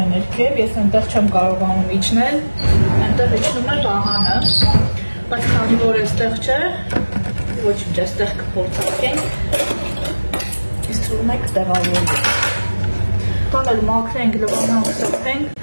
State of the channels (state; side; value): inverted; both; correlation -1.00